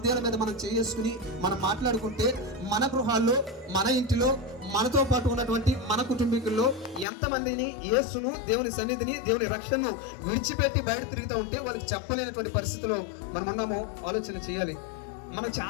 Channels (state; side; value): drops out; right; at 7.1 s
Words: మీద మనం చేసుకుని మనం మాట్లాడుకుంటే మన గృహాల్లో, మన ఇంటిలో, మనతో పాటు ఉన్నటువంటి మన కుటుంబీకుల్లో ఎంతమందిని యేసును, దేవుని సన్నిధిని, దేవుని రక్షణను విడిచిపెట్టి బయట తిరుగుతూ ఉంటే వాళ్ళకి చెప్పలేనటువంటి పరిస్థితిలో మనం ఉన్నామో ఆలోచన చేయాలి. మనం